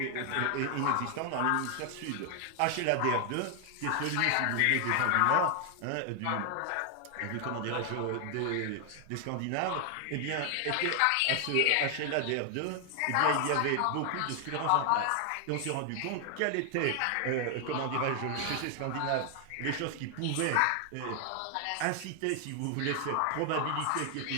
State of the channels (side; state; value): both; different; correlation 0.00